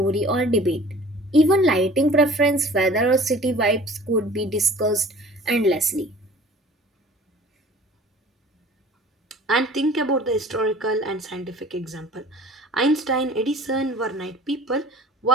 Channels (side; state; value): both; normal; correlation 0.46